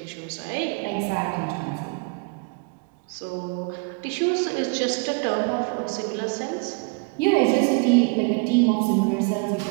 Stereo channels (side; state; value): left; quieter; 32.3 dB